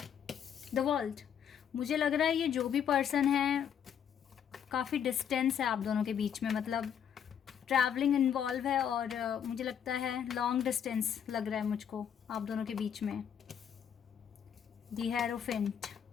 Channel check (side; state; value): right; quieter; 8.5 dB